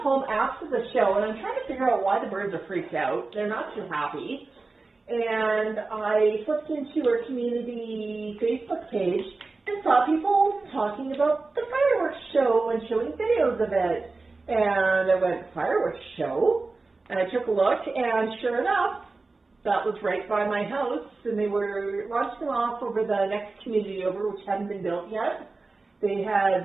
after the show, and I'm trying to figure out why the birds are freaked out. They're not too happy. And I flipped into our community Facebook page and saw people talking about the fireworks show and showing videos of it. And I went, fireworks show? And I took a look, and sure enough, that was right by my house, and they were launching off over the next community over, which hadn't been built yet. They had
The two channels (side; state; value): left; quieter; 3.6 dB